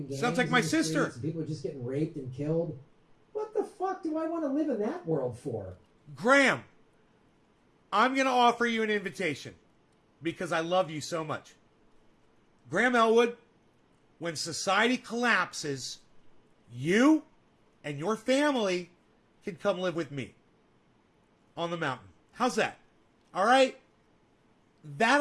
gangs. Sounds like my in the sister. streets, and people are just getting raped and killed. What the fuck do I want to live in that world for? Grahm, I'm going to offer you an invitation because I love you so much. Grahm Elwood, when society collapses, you and your family can come live with me on the mountain. How's that? All right? That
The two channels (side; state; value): both; identical; correlation 1.00